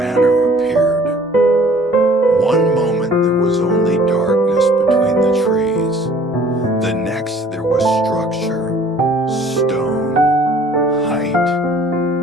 appeared. One moment there was only darkness between the trees. The next there was structure, stone, height,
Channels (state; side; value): normal; both; correlation 0.54